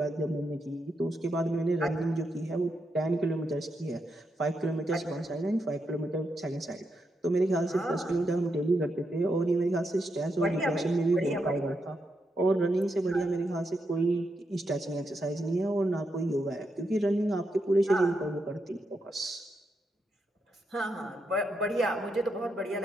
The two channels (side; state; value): both; normal; correlation 0.83